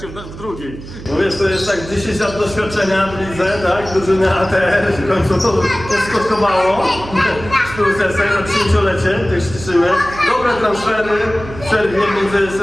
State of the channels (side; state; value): right; noise; hum, 14 dB below the sound